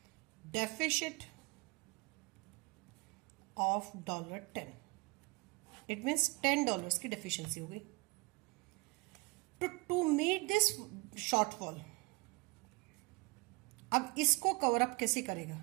deficit of $10. It means $10 की डेफिशिएंसी हो गई। टू मीट दिस शॉर्टफॉल, अब इसको कवर अप कैसे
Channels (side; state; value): left; quieter; 26.3 dB